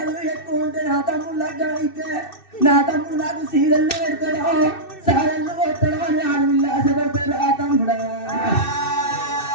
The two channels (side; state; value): right; late; 2.6 ms